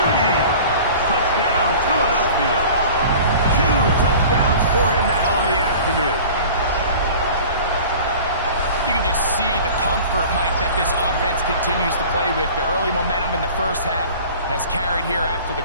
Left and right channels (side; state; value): both; inverted; correlation -0.42